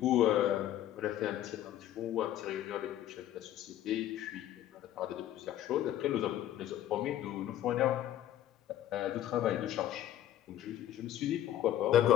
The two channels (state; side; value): quieter; right; 12.1 dB